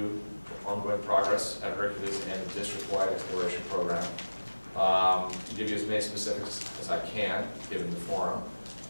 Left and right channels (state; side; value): inverted; both; correlation -1.00